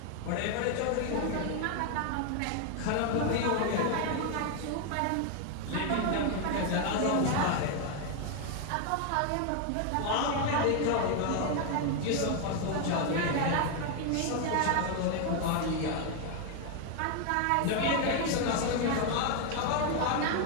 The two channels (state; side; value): different; both; correlation 0.01